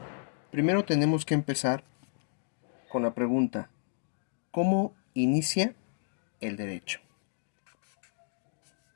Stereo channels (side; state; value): right; silent; digital silence